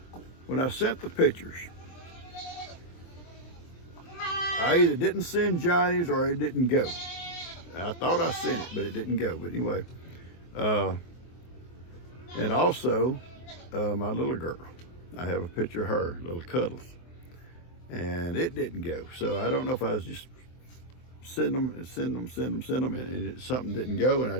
When I sent the pictures, I either didn't send Johnny's or it didn't go. I thought I sent it, but it didn't go. But anyway, and also my little girl. I have a picture of her, little Cuddles, and it didn't go. So I don't know if I was just send them, and something didn't go, and I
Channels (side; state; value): right; late; 23 ms